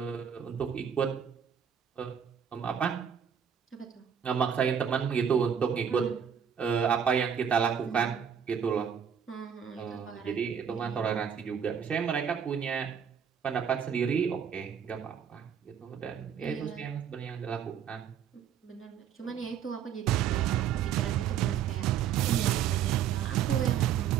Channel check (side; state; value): left; quieter; 8.1 dB